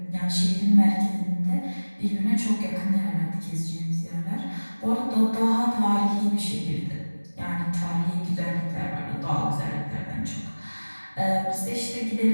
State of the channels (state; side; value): inverted; both; correlation -1.00